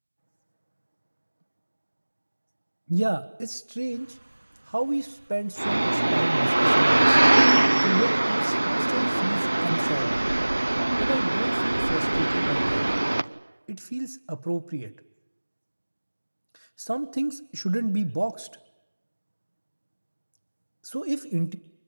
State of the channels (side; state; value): both; inverted; correlation -1.00